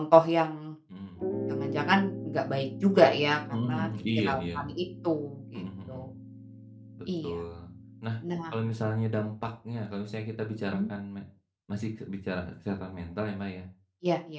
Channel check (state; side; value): identical; both; correlation 1.00